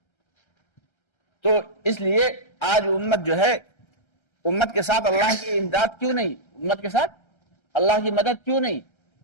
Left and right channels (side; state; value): right; late; 1.3 ms